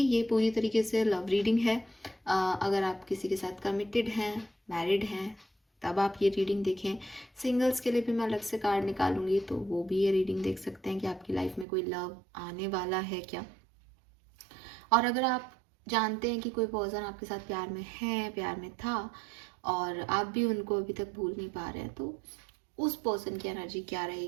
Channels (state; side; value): drops out; left; at 11.7 s